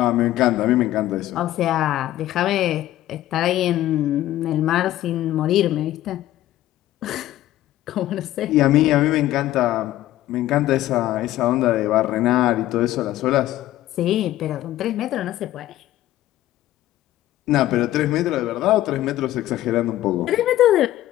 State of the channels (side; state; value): right; quieter; 14.4 dB